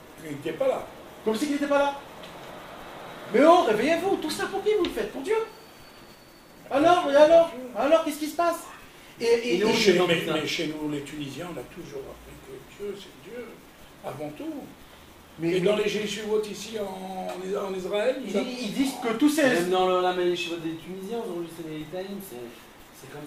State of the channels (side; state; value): both; identical; correlation 1.00